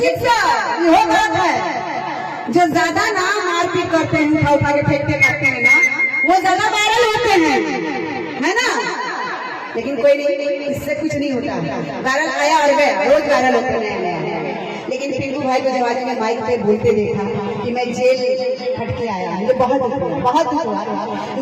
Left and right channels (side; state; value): both; identical; correlation 1.00